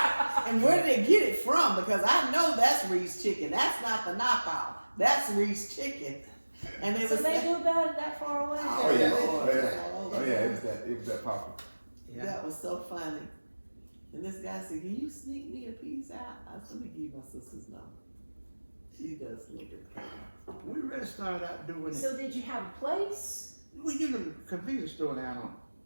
and where did they get it from? Because I know that's Reed's Chicken. That's not the knockoff. That's Reed's Chicken. And it So was they knew about it that far away? Oh yeah, oh yeah, it was that popular. Yeah. That was so funny. And this guy said, "Can you sneak me a piece out?" I said, "Let me give you my sister's number." She does look at it. We really started out doing it. So did you have a place? We get a convenience store down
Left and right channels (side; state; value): both; inverted; correlation -1.00